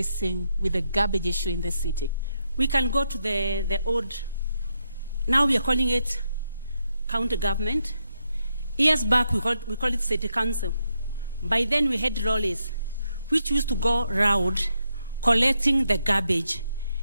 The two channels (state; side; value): inverted; both; correlation -0.81